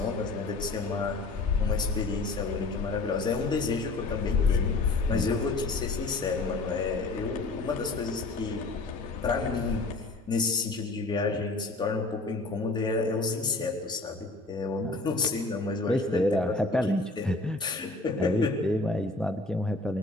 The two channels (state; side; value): quieter; right; 3.2 dB